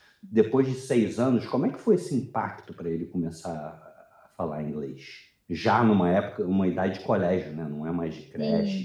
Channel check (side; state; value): both; identical; correlation 1.00